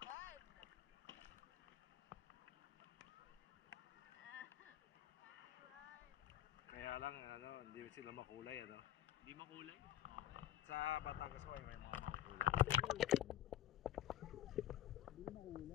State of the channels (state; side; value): quieter; right; 12.4 dB